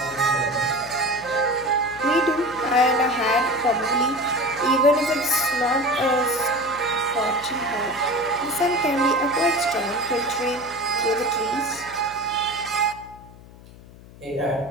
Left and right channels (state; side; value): noise; left; hum, 20 dB below the sound